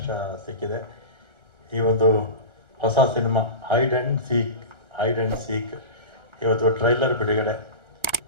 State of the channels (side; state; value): left; late; 1.4 ms